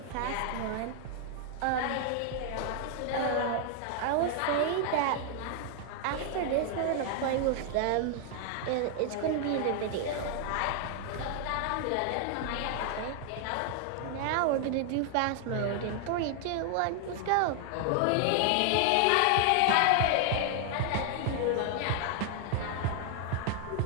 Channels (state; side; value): different; both; correlation 0.00